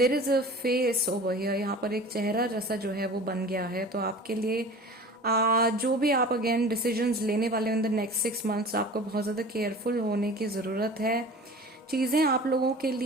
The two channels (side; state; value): both; normal; correlation 0.40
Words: is a phase over here, यहाँ पर एक चेहरा जैसा जो है वो बन गया है। तो आपके लिए जो भी आप अगेन डिसीजंस लेने वाले हो इन द नेक्स्ट 6 मंथ्स, आपको बहुत ज्यादा केयरफुल होने की जरूरत है। चीजें आप लोगों के